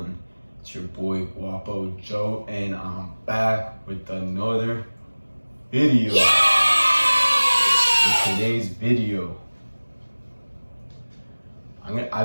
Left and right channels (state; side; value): inverted; both; correlation -1.00